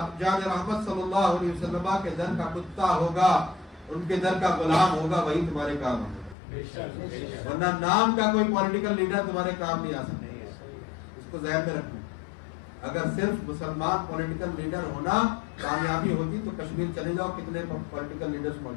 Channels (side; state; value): right; drops out; at 6.4 s